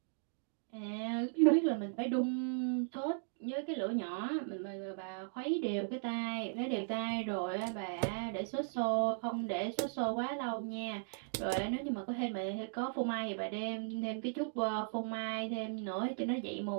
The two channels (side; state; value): left; silent; digital silence